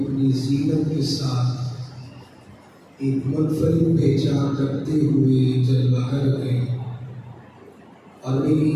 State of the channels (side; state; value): both; identical; correlation 1.00